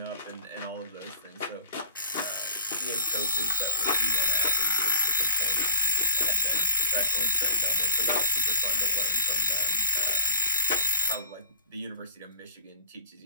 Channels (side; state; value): both; inverted; correlation -0.60